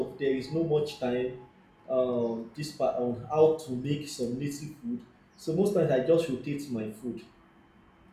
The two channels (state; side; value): identical; both; correlation 1.00